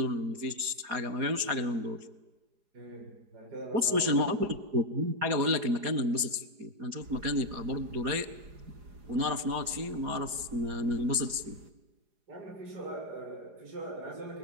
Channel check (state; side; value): late; left; 4.8 ms